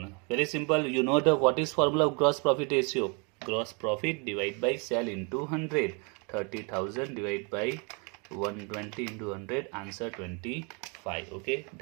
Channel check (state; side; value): quieter; left; 33.5 dB